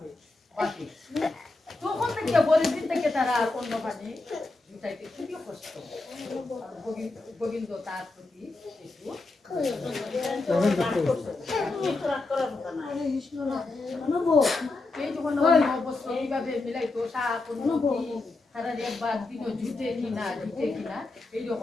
বাকি তখন থেকে পরের দিন থেকে তারা আর অন্য পানি জুটাইতে খুবই কষ্ট গোবিন্দ তার প্রতি একটু এই যখন অবস্থা এইভাবে মিলাইতো শাক তারা একবার দিন জুটে কিনা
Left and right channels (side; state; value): right; quieter; 3.3 dB